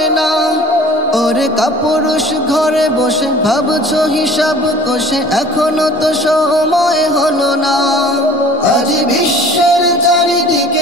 না। ওরে কাপুরুষ ঘরে বসে ভাবছো হিসাব কষে, এখনো তো সময় হলো না। আজ বিশ্বের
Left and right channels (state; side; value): normal; both; correlation 0.47